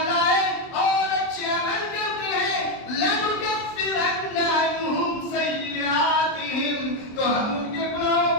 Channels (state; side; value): late; right; 23 ms